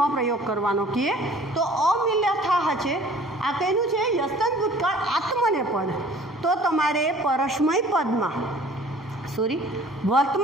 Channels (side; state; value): both; normal; correlation 0.50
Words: પ્રયોગ કરવાનો કહે તો અમિલથાહ છે. આ કહેલું છે યસ્તન ભૂતકાળ આત્મનેપદ. તો તમારે પરસ્મય પદમાં, સોરી